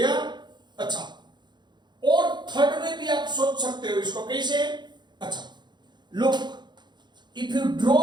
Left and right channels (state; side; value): late; left; 0.21 ms